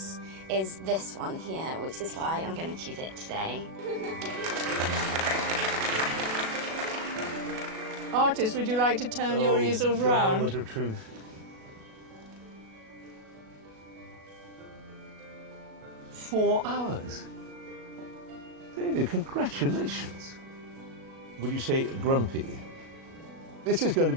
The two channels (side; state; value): left; late; 37 ms